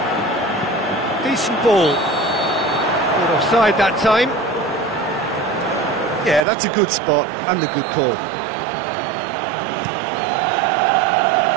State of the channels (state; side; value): drops out; left; at 6.4 s